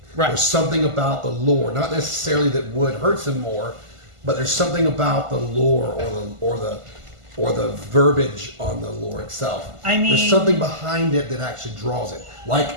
Right. There's something about the lore, not necessarily that wood hurts him more, but there's something about the lore or the verbiage on the lore itself. I mean- there's something behind it that actually draws it. Like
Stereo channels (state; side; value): late; left; 1.5 ms